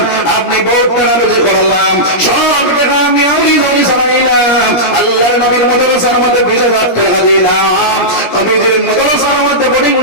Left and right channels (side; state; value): right; late; 17 ms